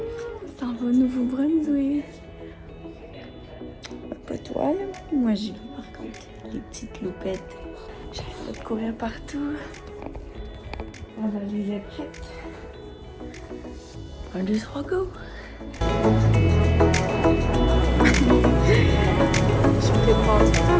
Ça va au Nouveau-Brunswick. Pas toi, là. Moi, j'y vais, par contre. Les petites loupettes. J'arrête de courir partout. La valise est prête. 1, 2, 3, go! Je prépare tout un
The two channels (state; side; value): identical; both; correlation 1.00